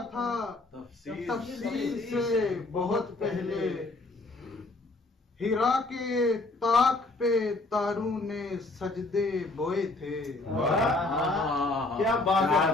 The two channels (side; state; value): right; quieter; 3.0 dB